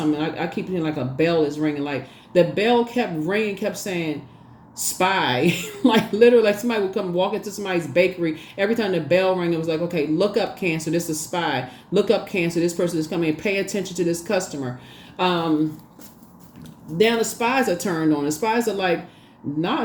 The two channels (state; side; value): identical; both; correlation 1.00